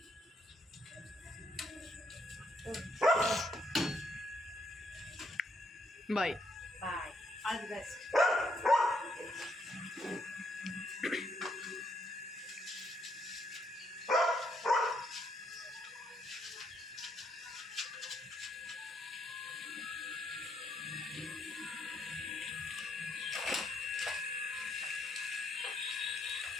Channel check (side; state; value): both; normal; correlation 0.73